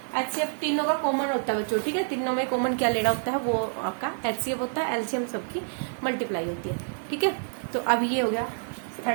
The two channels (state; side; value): silent; left; digital silence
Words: HCF तीनों का कॉमन होता है बच्चों। ठीक है, तीनों में कॉमन क्या लेना होता है, वो आपका HCF होता है, LCM सबकी मल्टीप्लाई होती है। ठीक है, तो अब ये हो गया